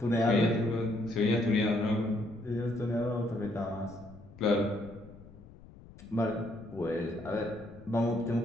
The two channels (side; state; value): left; noise; rumble, 20 dB below the sound